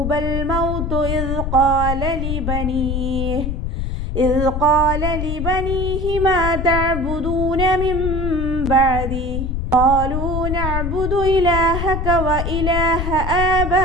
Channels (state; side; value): noise; left; rumble, 2 dB below the sound